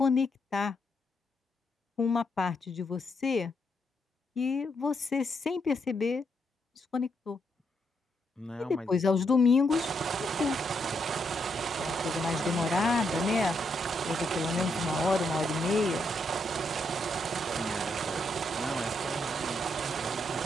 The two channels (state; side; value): normal; both; correlation 0.78